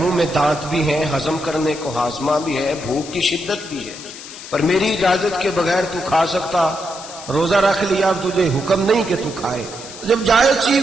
میں دانت بھی ہیں، ہضم کرنے کو ہاضمہ بھی ہے، بھوک کی شدت بھی ہے، پر میری اجازت کے بغیر تو کھا سکتا، روزہ رکھ لیا، اب تجھے حکم نہیں کہ تو کھائے۔ جب جائز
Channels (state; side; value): noise; left; hiss, 14 dB below the sound